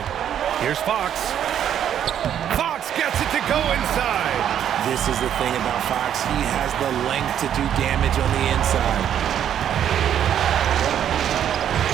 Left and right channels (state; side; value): quieter; left; 9.7 dB